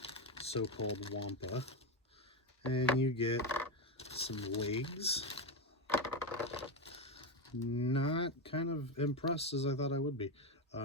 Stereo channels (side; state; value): both; normal; correlation 0.12